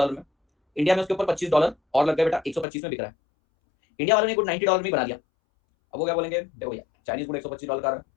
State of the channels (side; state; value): right; drops out; at 2.7 s